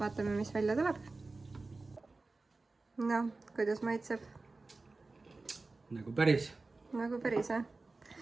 mis välja tuleb. No, kuidas maitseb? Nagu päris. Nagu päris, jah?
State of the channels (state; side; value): quieter; left; 3.5 dB